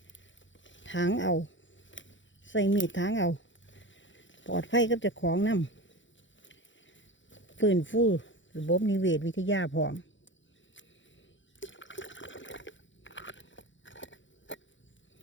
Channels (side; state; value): right; late; 0.55 ms